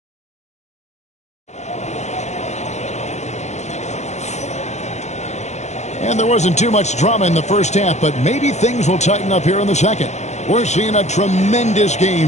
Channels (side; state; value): right; late; 0.33 ms